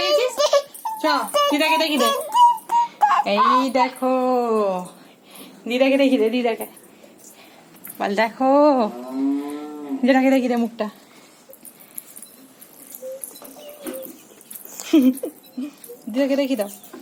চ দিদাকে দেখি দে। এই দেখো দিদাকে দেখি দে, দিদাকে বল দেখো, দিদাকে দেখি দে মুখটা। দিদাকে দেখি দাও,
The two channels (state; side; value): identical; both; correlation 1.00